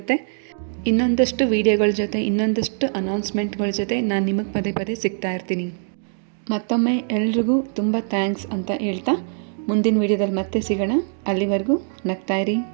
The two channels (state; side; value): silent; left; digital silence